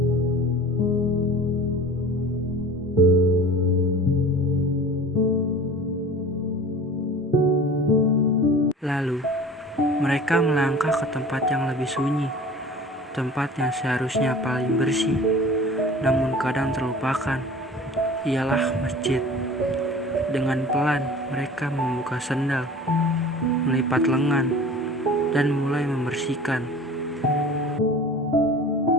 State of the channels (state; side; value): normal; both; correlation 0.41